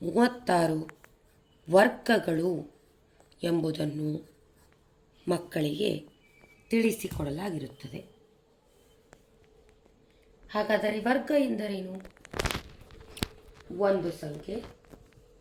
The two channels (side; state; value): both; identical; correlation 1.00